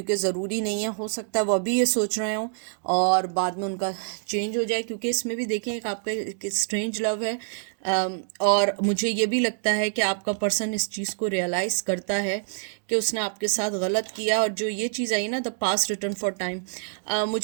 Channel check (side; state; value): left; silent; digital silence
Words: ज़रूरी नहीं है, हो सकता है वो अभी ये सोच रहे हो और बाद में उनका चेंज हो जाए, क्योंकि इसमें भी देखें एक आपका एक स्ट्रेंज लव है। और मुझे ये भी लगता है कि आपका पर्सन इस चीज़ को रियलाइज़ करता है कि उसने आपके साथ गलत किया। और जो ये चीज़ आई ना, the past return for time,